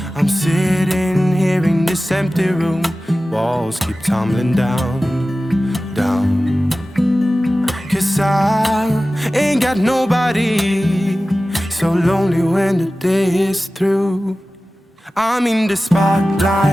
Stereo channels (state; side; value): normal; both; correlation 0.96